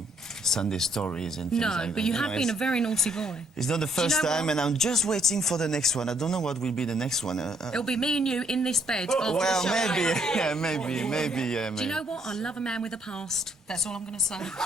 Sunday stories and things like that. No, but you have been a it's- very naughty boy. It's not the first know time, what? and I'm just waiting for the next one. I don't know what will be the next one. It'll be me and you in this bed. after Well, the show. maybe, yeah, maybe, yeah. Do you know what? I love a man with a past. That's all I'm going to say.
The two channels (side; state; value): both; normal; correlation 0.69